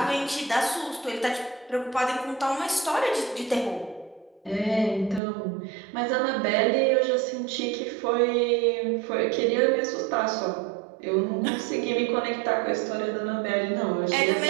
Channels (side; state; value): left; drops out; at 5.2 s